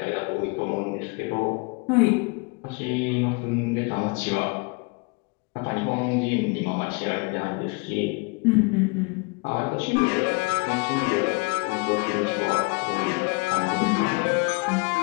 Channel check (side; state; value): right; quieter; 29.8 dB